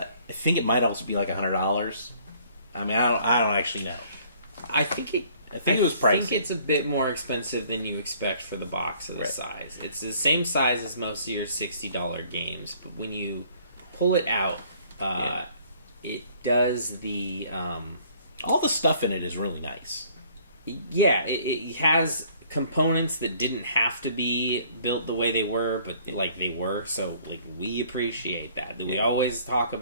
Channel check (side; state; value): both; inverted; correlation -0.58